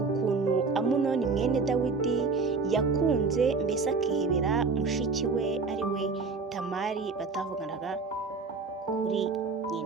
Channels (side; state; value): left; quieter; 4.4 dB